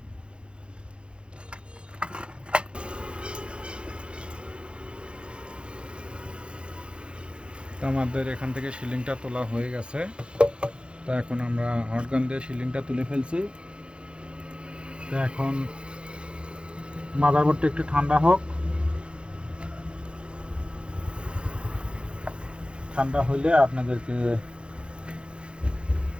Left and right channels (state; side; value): late; left; 0.056 ms